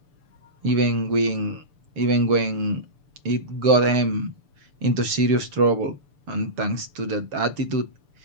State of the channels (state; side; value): late; left; 6.9 ms